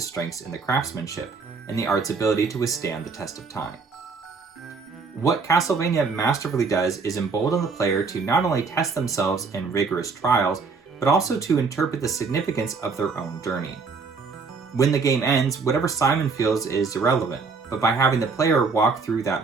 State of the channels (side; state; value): left; quieter; 4.7 dB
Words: in the craftsmanship and the art's ability to withstand the test of time. What Castlevania masterfully does is embolden the player to not only test themselves in rigorous trials, but also to interpret the significance of their own journey. When the game ends, whatever Simon feels is irrelevant, but by having the player walk through